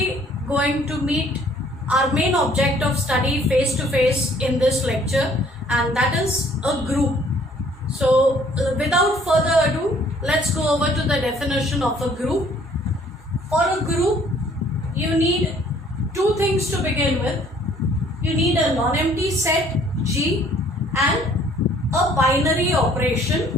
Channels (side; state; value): both; normal; correlation 0.59